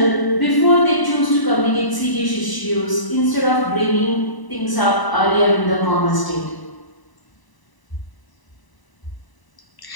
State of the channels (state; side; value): late; right; 1.0 ms